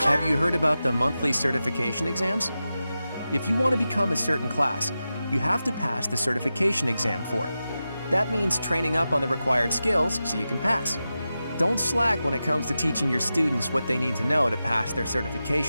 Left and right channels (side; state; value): both; inverted; correlation -0.92